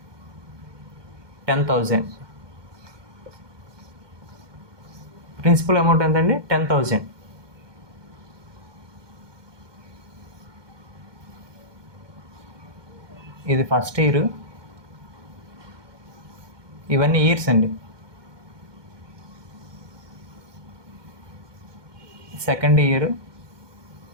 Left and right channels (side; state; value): left; late; 1.2 ms